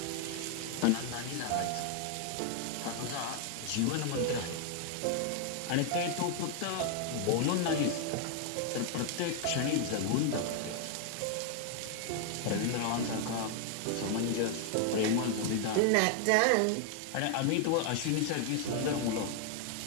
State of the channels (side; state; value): both; different; correlation 0.00